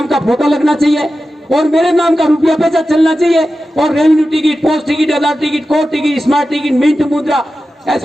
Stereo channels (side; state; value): both; normal; correlation 0.93